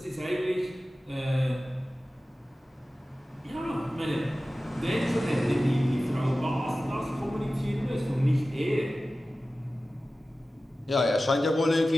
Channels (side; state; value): both; normal; correlation 0.95